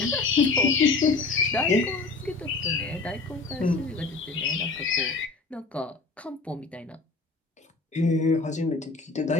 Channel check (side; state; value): right; quieter; 3.9 dB